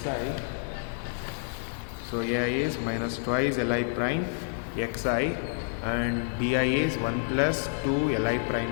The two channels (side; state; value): right; silent; digital silence